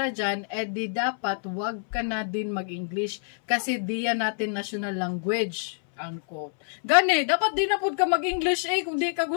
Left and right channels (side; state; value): right; silent; 60 dB below the other